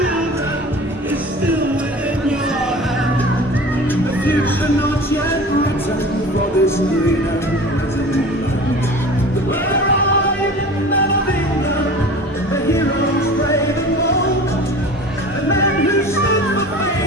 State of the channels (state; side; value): normal; both; correlation 0.39